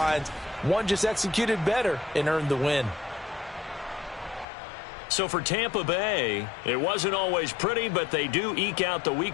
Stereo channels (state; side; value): drops out; right; at 4.5 s